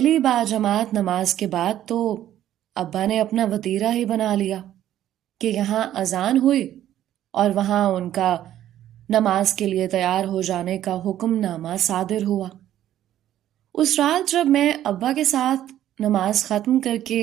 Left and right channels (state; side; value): quieter; left; 12.1 dB